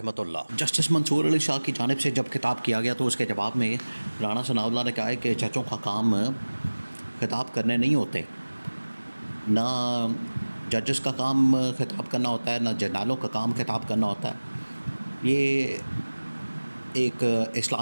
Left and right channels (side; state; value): both; inverted; correlation -1.00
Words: जस्टिस मंसूर अली शाह की जानिब से जब खिताब किया गया तो उसके जवाब में राना सनाउल्लाह ने कहा है कि जजों का काम खिताब करने नहीं होते, ना जजेस का काम खिताब करना होता है, ना जर्नलों का काम खिताब करना होता है। ये एक